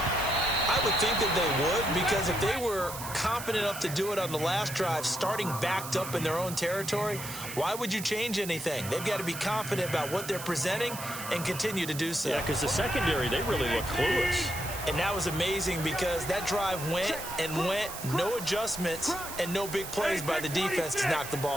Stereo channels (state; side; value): noise; right; hiss, 9 dB below the sound